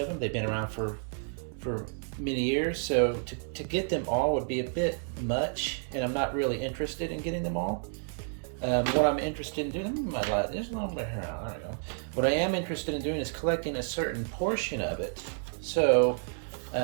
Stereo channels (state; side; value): silent; left; 57 dB below the other